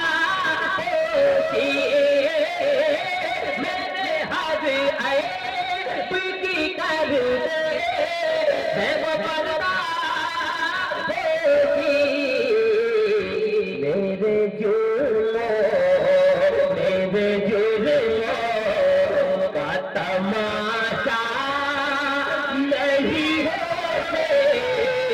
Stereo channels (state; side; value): identical; both; correlation 1.00